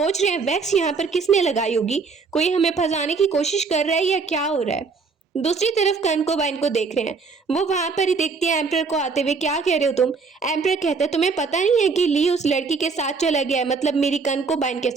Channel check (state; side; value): quieter; left; 4.8 dB